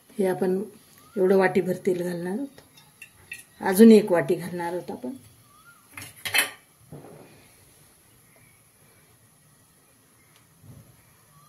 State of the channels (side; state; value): both; identical; correlation 1.00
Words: हे आपण एवढं वाटीभर तेल घालणार आहोत. अजून 1 वाटी घालणार आहोत आपण.